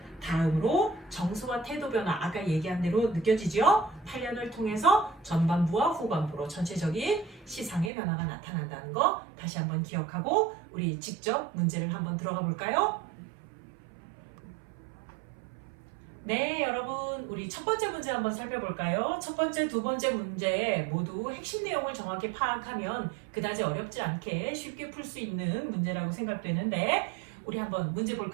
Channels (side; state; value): left; drops out; at 7.9 s